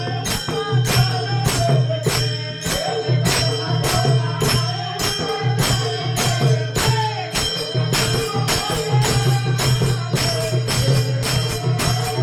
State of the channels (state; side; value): identical; both; correlation 1.00